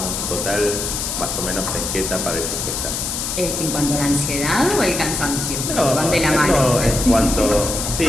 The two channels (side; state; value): left; noise; hiss, 3 dB below the sound